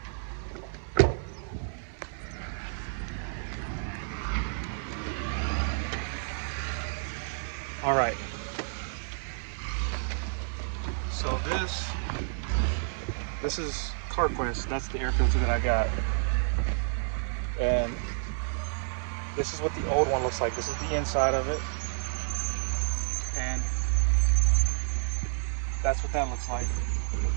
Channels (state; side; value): silent; left; 58 dB below the other